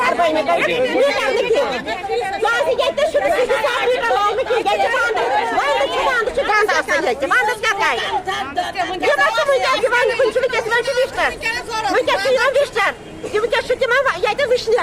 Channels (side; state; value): both; identical; correlation 1.00